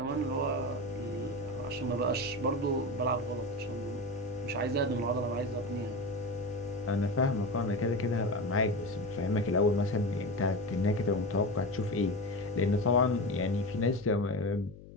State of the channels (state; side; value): noise; left; hum, 17 dB below the sound